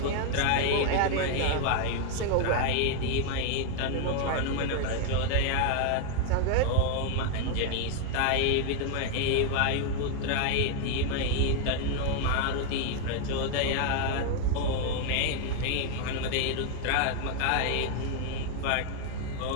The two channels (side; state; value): both; different; correlation 0.00